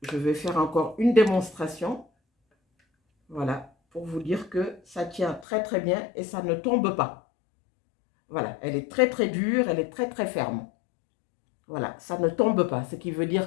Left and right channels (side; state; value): right; drops out; at 5.5 s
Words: je vais faire encore une démonstration. Voilà, pour vous dire que ça tient très bien et ça ne tombe pas. Voilà, elle est très dure, elle est très ferme. Voilà, ça ne tombe pas, ce qui veut